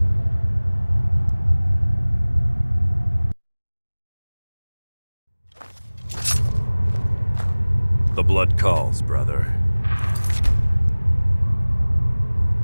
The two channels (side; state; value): both; inverted; correlation -1.00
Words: The blood calls, brother.